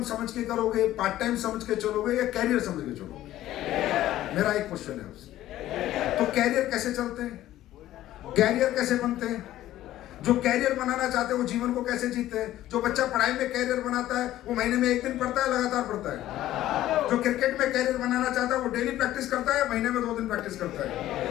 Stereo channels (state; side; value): quieter; right; 14.0 dB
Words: समझ के करोगे, पार्ट टाइम समझ के चलोगे, या कैरियर समझ के चलोगे? मेरा एक क्वेश्चन है आपसे। तो कैरियर कैसे चलते हैं, कैरियर कैसे बनते हैं? जो कैरियर बनाना चाहते हैं वो जीवन को कैसे जीते हैं? जो बच्चा पढ़ाई में कैरियर बनाता है वो महीने में एक दिन पढ़ता है, लगातार पढ़ता है। जो क्रिकेट में कैरियर बनाना चाहता है वो डेली प्रैक्टिस करता है, महीने में 2 दिन प्रैक्टिस करता